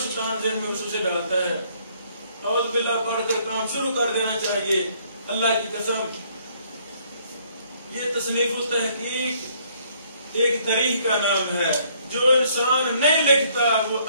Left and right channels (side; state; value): both; inverted; correlation -0.64